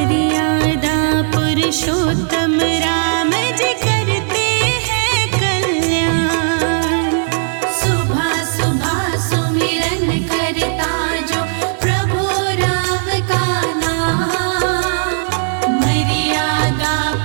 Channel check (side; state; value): left; silent; digital silence